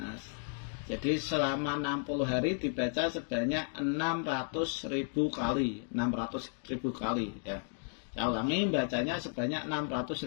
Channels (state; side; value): silent; right; 55 dB below the other